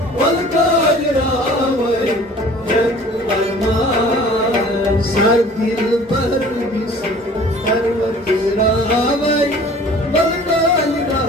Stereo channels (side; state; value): both; normal; correlation 0.48